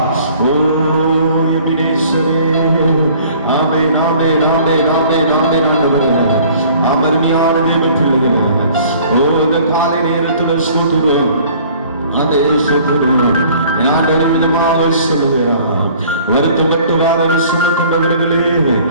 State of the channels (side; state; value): both; inverted; correlation -0.52